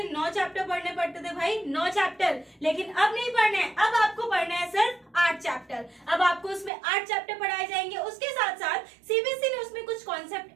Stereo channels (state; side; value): drops out; left; at 6.7 s